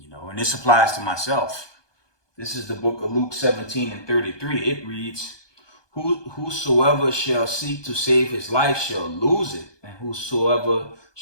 know, and this applies to myself. This is the book of Luke 17:33. It reads, whosoever shall seek to save his life shall lose it, and whosoever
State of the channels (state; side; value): late; right; 1.2 ms